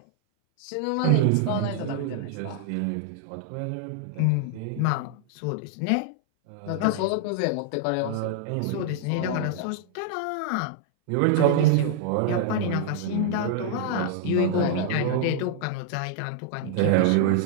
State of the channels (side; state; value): both; different; correlation -0.01